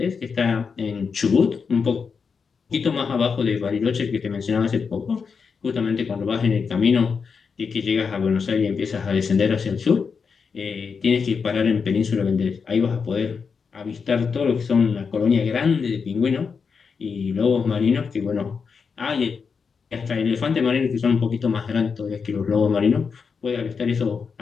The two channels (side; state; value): right; quieter; 5.7 dB